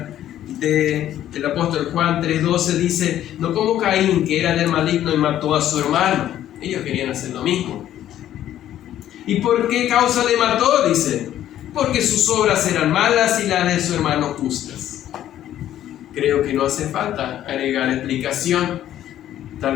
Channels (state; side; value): quieter; right; 11.9 dB